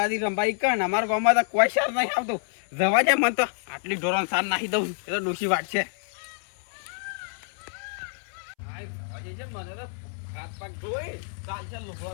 રંભાઈ કણ. અમારા ગામમાં તો કોઈ સાર નહીં આવતું. જવા દે મને તો આટલી ઢોરણ સાર નાખી દઉં એ તો ડોસી વાટ છે. મને તો હાથ પગ ધોઈ ચાલશે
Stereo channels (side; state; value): right; silent; 60 dB below the other